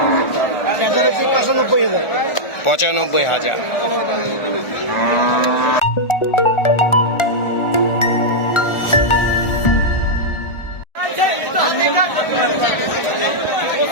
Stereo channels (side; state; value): right; late; 1.4 ms